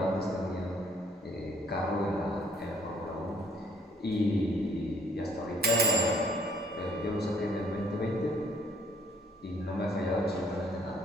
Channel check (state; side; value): normal; both; correlation 0.61